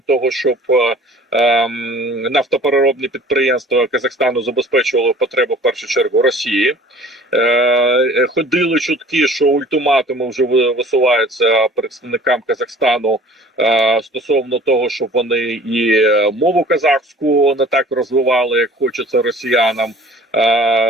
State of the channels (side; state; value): both; normal; correlation 0.48